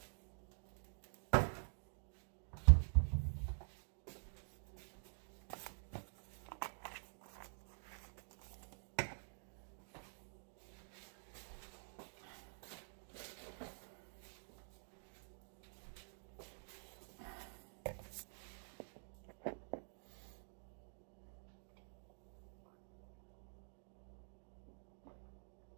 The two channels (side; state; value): left; silent; digital silence